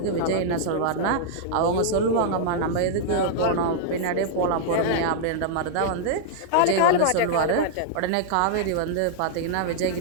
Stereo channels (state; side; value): different; both; correlation -0.01